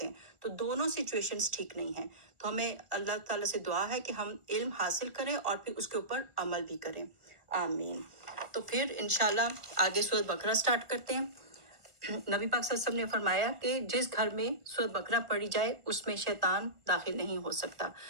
ہیں۔ تو دونوں سچویشنز ٹھیک نہیں ہیں۔ تو ہمیں اللہ تعالیٰ سے دعا ہے کہ ہم علم حاصل کریں اور پھر اس کے اوپر عمل بھی کریں، آمین۔ تو پھر انشاءاللہ آگے سورۃ بقرہ سٹارٹ کرتے ہیں۔ نبی پاک صلی اللہ علیہ وسلم نے فرمایا کہ جس گھر میں سورۃ بقرہ پڑھی جائے اس میں شیطان داخل نہیں ہو سکتا۔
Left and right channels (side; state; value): left; late; 1.3 ms